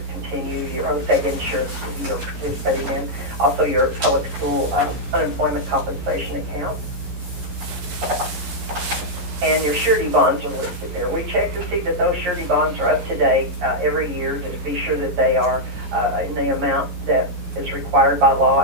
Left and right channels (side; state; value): left; late; 11 ms